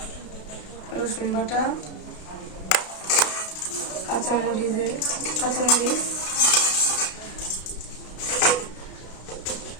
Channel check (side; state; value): right; late; 32 ms